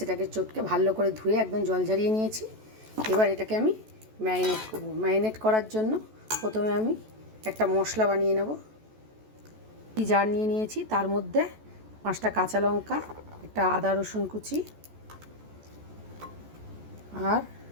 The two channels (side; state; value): left; late; 14 ms